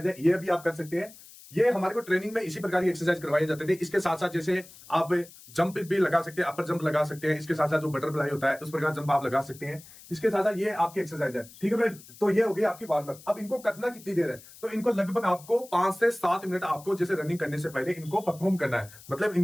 है, ये भी आप कर सकते हैं। ये हमारे को ट्रेनिंग में इसी प्रकार की एक्सरसाइज करवाए जाते थे। इसके साथ साथ जैसे आप जंप भी लगा सकते हैं, अपर जंप लगा सकते हैं। इसके साथ साथ जो बटरफ्लाई होता है उस प्रकार जंप आप लगा सकते हैं। इसके साथ साथ ये आपकी एक्सरसाइज है। ठीक है भाई, तो ये हो गई आपकी वार्म अप। अब इनको करना कितनी देर है? तो इनको लगभग आपको 5 से 7 मिनट आपको जैसे रनिंग करने से पहले इनको परफॉर्म करना है, मतलब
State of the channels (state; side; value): noise; left; hiss, 20 dB below the sound